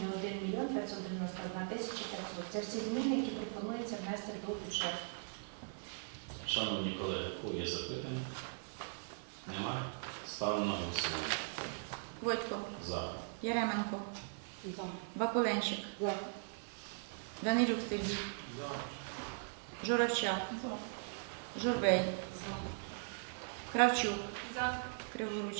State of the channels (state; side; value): silent; left; digital silence